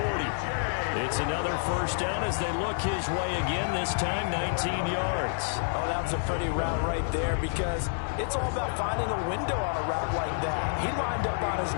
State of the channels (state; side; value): silent; right; digital silence